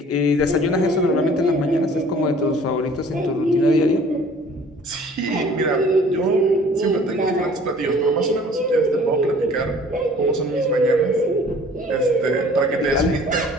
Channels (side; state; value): both; normal; correlation 0.51